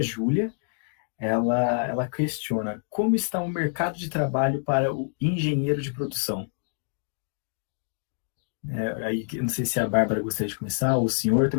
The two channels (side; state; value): right; silent; digital silence